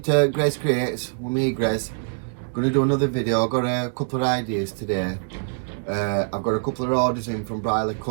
to Grace Creates, with me Grace. Gonna do another video. I've got a couple of ideas today. I've got a couple of orders in from Briley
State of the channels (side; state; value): left; silent; digital silence